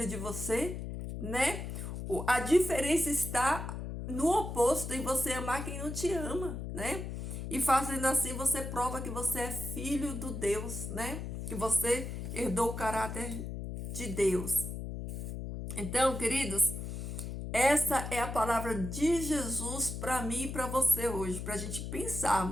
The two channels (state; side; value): noise; left; hum, 6 dB below the sound